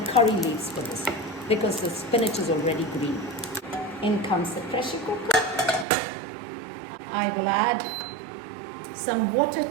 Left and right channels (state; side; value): drops out; left; at 5.9 s